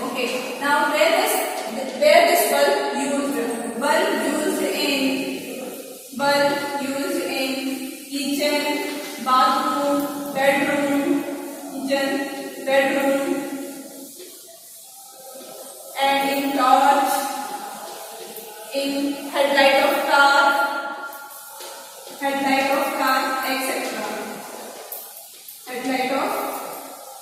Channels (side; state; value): both; identical; correlation 1.00